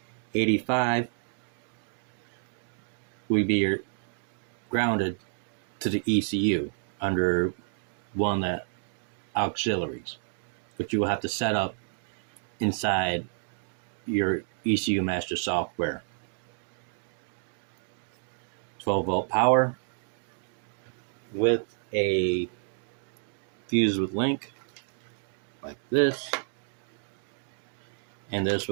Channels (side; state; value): left; silent; digital silence